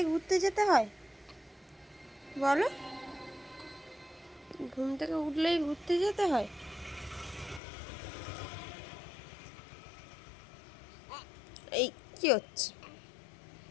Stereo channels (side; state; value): right; drops out; at 7.6 s